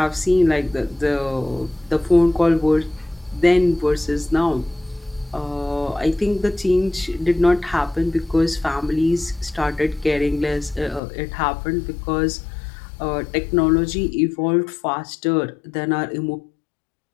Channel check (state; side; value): drops out; right; at 11.0 s